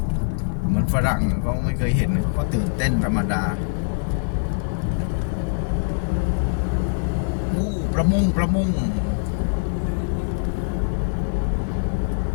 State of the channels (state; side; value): silent; right; 63 dB below the other